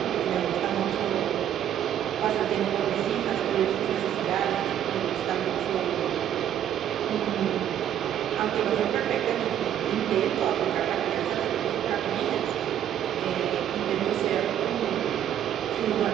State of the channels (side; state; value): left; quieter; 10.4 dB